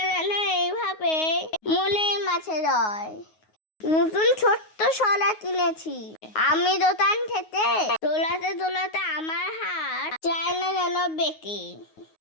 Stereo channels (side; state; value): right; late; 9.5 ms